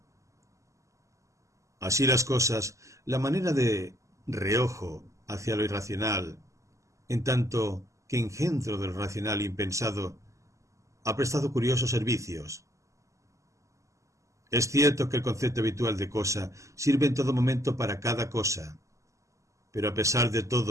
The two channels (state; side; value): late; left; 0.15 ms